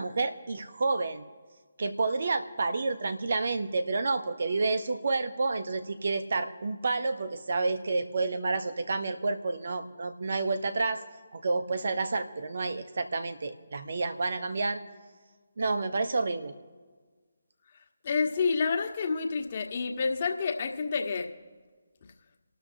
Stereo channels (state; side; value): inverted; both; correlation -0.88